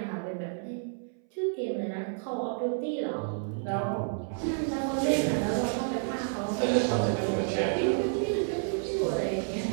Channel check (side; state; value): left; silent; 58 dB below the other